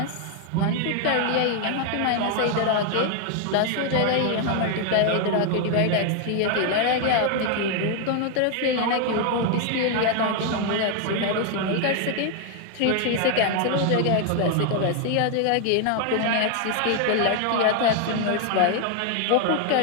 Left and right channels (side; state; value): both; different; correlation 0.00